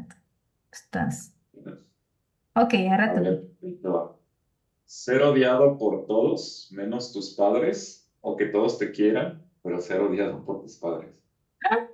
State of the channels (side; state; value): both; identical; correlation 1.00